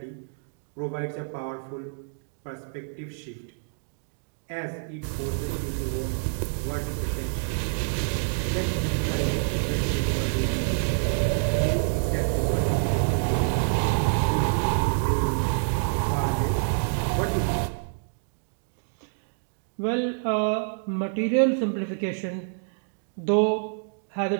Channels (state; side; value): silent; left; digital silence